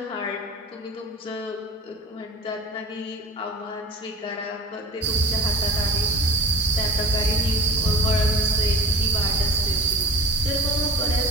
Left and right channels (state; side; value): normal; both; correlation 0.36